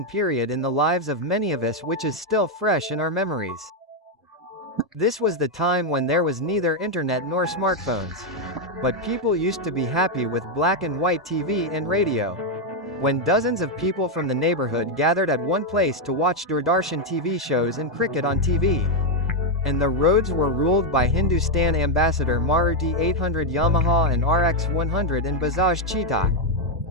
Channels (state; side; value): normal; both; correlation 0.02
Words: period in the lives of many of us, which is still fresh in our memories. This was the time when there was neither internet nor smartphones. But people used to be happy with black and white TV and radio. When dozens of people from the neighborhood gathered at one place to watch Doordarshan TV shows and cricket on TV. And the roads were ruled by Hindustan Ambassador Maruti 800 Yamaha and RX 100 and Bajaj Cheetah.